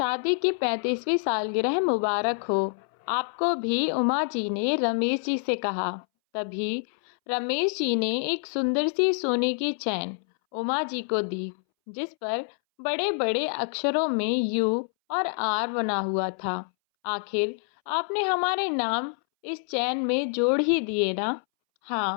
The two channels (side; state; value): right; silent; 60 dB below the other